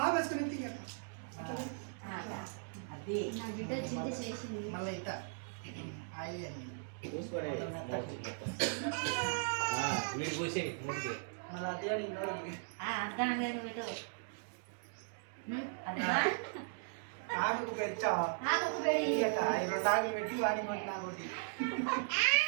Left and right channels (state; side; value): silent; left; digital silence